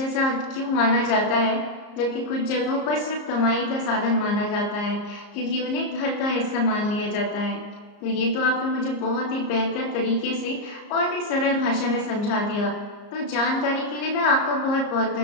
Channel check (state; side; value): late; right; 34 ms